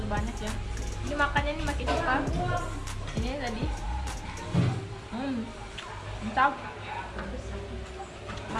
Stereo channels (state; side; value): identical; both; correlation 1.00